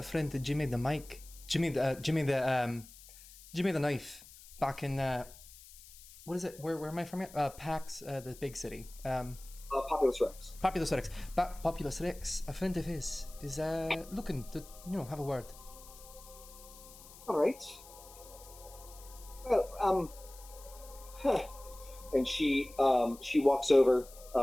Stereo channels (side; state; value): left; noise; hiss, 19 dB below the sound